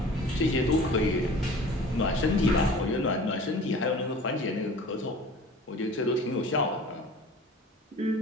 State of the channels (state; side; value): normal; both; correlation 0.43